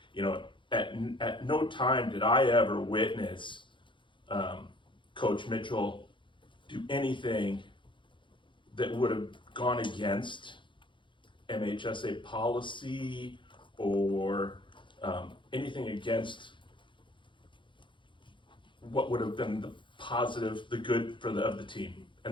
you know, at no time did I ever witness Coach Mitchell do anything that would have gone against MHSA policy or anything against what would have been the positive, the good of the team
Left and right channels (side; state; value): right; late; 0.24 ms